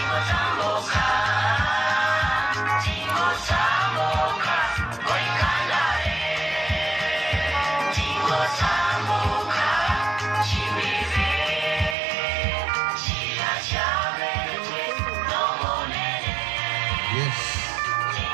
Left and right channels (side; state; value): left; drops out; at 12.0 s